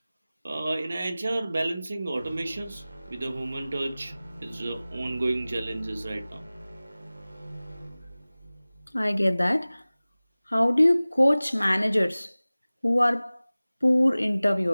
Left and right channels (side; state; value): both; inverted; correlation -0.98